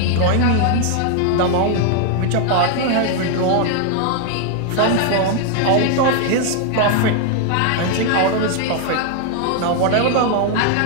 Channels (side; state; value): both; different; correlation 0.00